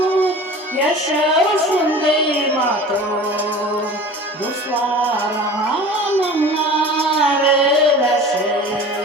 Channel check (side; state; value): both; normal; correlation 0.39